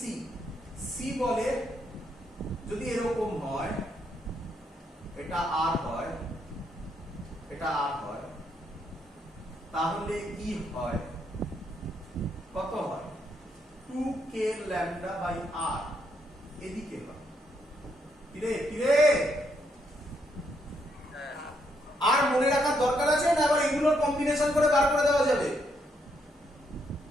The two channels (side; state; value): both; normal; correlation 0.76